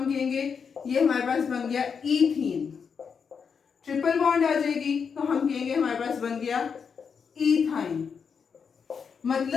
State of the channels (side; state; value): right; quieter; 6.3 dB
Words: कहेंगे ये हमारे पास बन गया ईथीन। ट्रिपल बॉन्ड आ जाएगी तो हम कहेंगे हमारे पास बन गया ईथाइन।